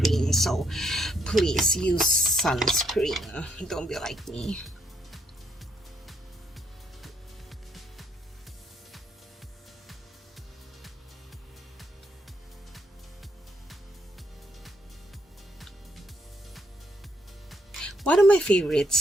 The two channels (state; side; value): normal; both; correlation 0.73